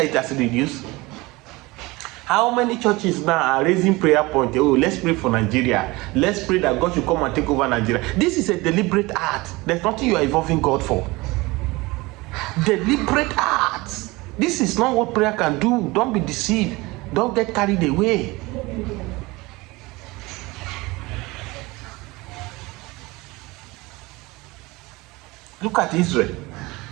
it has reduced? How many churches now are raising prayer point? Oh, let's pray for Nigeria. Let's pray that God should come and take over Nigeria. This is a deliberate act. There's nothing you are involving God for. Deliberate acts. This is not what prayer can do. Don't be deceived. Don't get carried away. Look at Israel.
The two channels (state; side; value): quieter; left; 22.4 dB